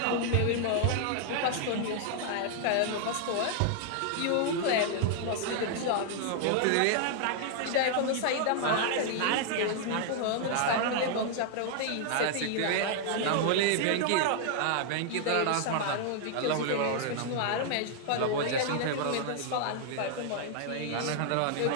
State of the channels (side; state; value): both; different; correlation 0.00